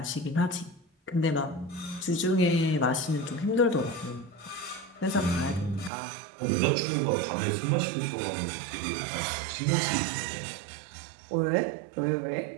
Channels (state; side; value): drops out; left; at 5.9 s